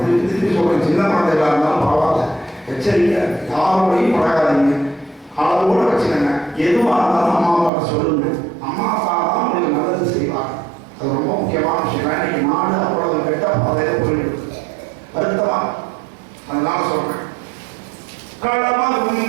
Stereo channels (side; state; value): left; drops out; at 7.7 s